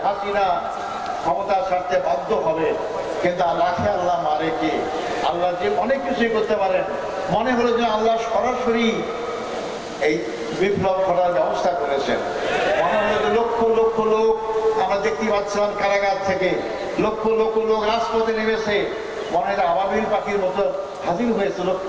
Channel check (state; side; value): identical; both; correlation 1.00